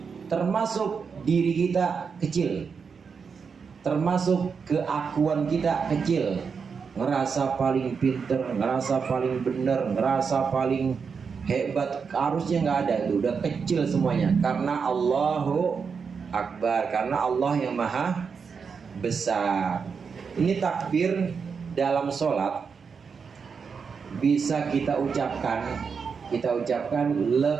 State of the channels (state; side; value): quieter; left; 5.8 dB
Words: Termasuk diri kita kecil, termasuk keakuan kita kecil. Ngerasa paling pinter, ngerasa paling bener, ngerasa paling hebat, harusnya nggak ada. Itu udah kecil semuanya, karena Allahu Akbar, karena Allah yang Maha Besar. Ini takbir dalam sholat bisa kita ucapkan